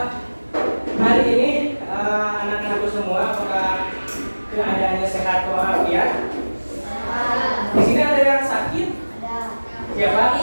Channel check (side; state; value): both; inverted; correlation -1.00